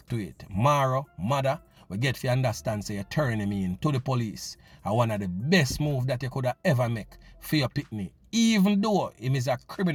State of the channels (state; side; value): identical; both; correlation 1.00